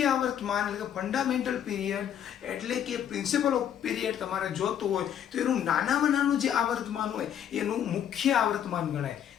આવર્તમાન એટલે કે ફંડામેન્ટલ પીરિયડ એટલે કે પ્રિન્સિપલ ઓફ પીરિયડ તમારે જોતું હોય તો એનું નાનામાં નાનું જે આવર્તમાન હોય એનું મુખ્ય આવર્તમાન ગણાય.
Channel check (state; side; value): quieter; right; 9.5 dB